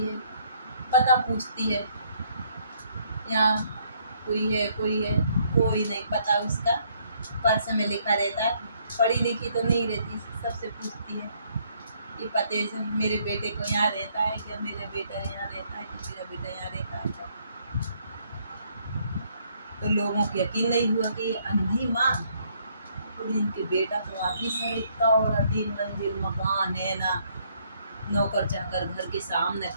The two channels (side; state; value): both; inverted; correlation -0.68